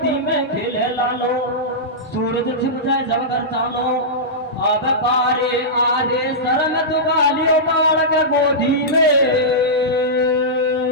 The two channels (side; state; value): both; normal; correlation -0.13